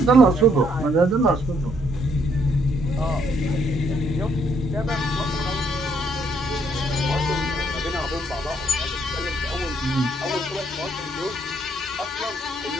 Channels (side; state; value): both; normal; correlation 0.70